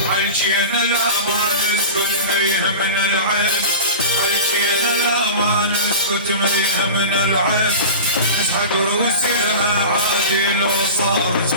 عالجينا لا ما نسبة فيها من العين، عالجينا لا ما نسبة اسكت ميها من العيب اسحق روسي لها عادي لو صار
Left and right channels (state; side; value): inverted; both; correlation -0.31